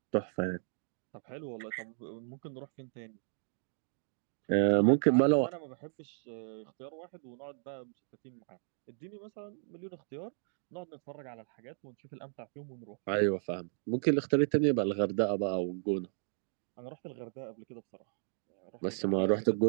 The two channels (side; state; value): left; silent; digital silence